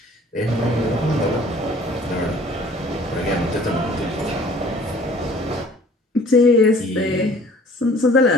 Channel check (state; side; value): normal; both; correlation 0.52